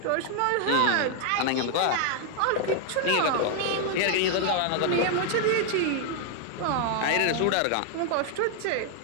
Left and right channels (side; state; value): both; different; correlation 0.00